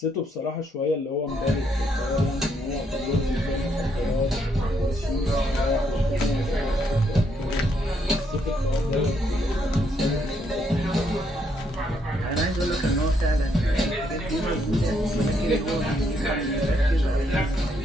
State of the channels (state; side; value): normal; both; correlation 0.74